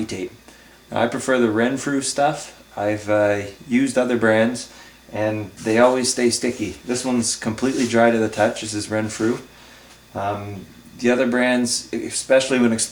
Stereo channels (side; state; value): both; identical; correlation 1.00